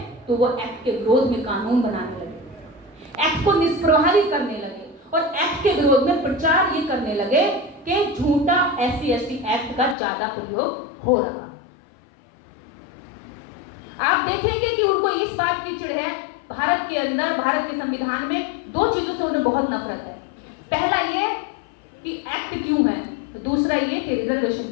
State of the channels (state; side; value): drops out; right; at 10.0 s